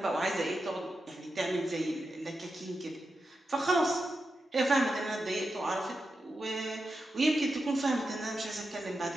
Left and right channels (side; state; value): both; normal; correlation 0.89